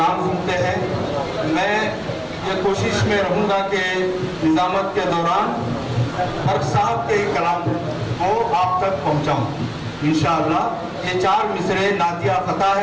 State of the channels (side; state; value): both; identical; correlation 1.00